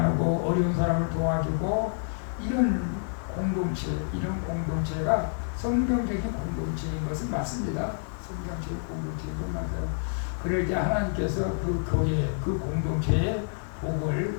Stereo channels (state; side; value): silent; right; digital silence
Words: 어려운 사람을 도와주고 이런 공동체가 성경적인 공동체인 것은 맞습니다. 성경적인 공동체인 건 맞아요. 그럴 때 하나님께서 그 교회, 그 공동체에 복을